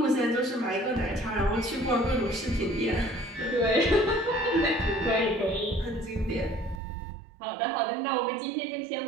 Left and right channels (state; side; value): drops out; left; at 6.8 s